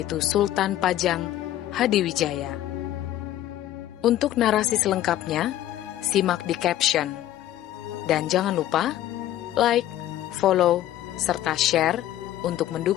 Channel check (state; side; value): quieter; right; 13.2 dB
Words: Sultan Pajang Hadiwijaya. Untuk narasi selengkapnya, simak di caption. Dan jangan lupa like, follow, serta share untuk